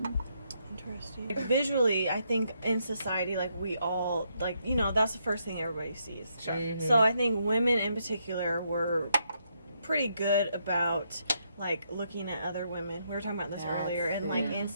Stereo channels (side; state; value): both; inverted; correlation -0.77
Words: Interesting. Visually, I think in society, like we all, like, you know, that's the first thing everybody sees. Sure. So I think women in particular were pretty good about like looking at other women. We were talking about this earlier, and like